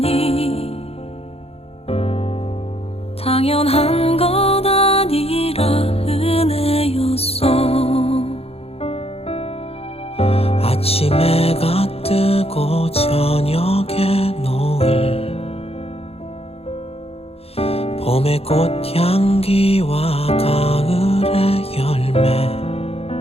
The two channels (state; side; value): late; right; 0.29 ms